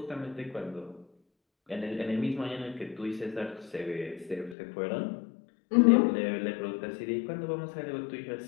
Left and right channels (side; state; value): right; drops out; at 4.5 s